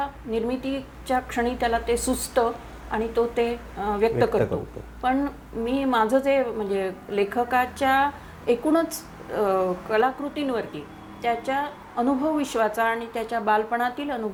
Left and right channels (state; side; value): identical; both; correlation 1.00